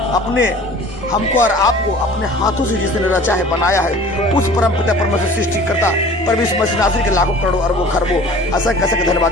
हमको और आपको अपने हाथों से जिसने रचा है बनाया है उस परम पिता परमेश्वर सृष्टिकर्ता परमेश्वर मसीह नासरी के लाखों करोड़ों अरबों खरबों असंख्य असंख्य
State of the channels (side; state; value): both; normal; correlation 0.45